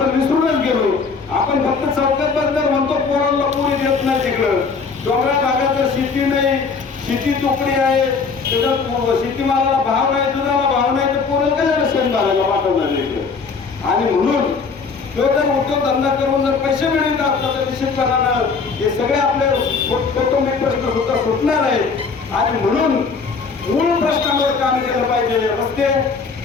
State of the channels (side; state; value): right; quieter; 5.0 dB